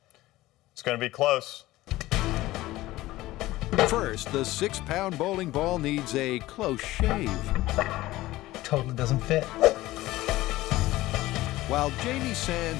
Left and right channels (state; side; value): quieter; right; 17.3 dB